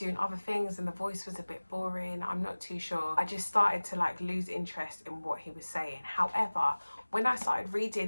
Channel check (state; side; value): inverted; both; correlation -1.00